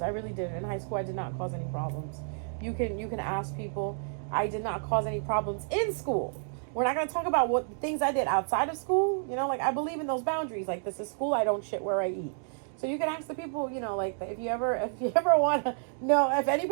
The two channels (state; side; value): silent; left; digital silence